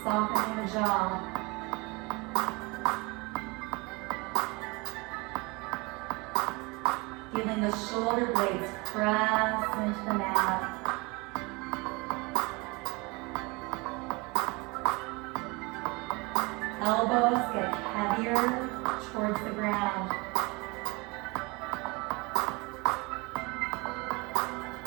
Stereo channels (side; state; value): left; quieter; 26.6 dB